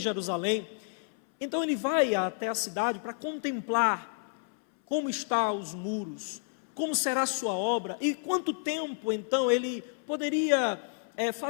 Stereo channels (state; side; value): silent; right; 58 dB below the other